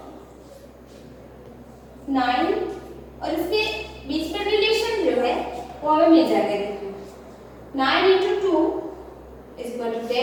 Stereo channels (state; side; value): identical; both; correlation 1.00